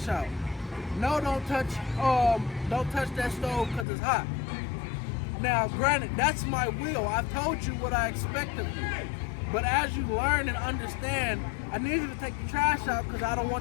out. No, don't touch that stove because it's hot. Now, granted, that's my will. I've told you what I expect of you. But as you learn and understand, I need you to take the trash out because I don't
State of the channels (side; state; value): right; drops out; at 3.9 s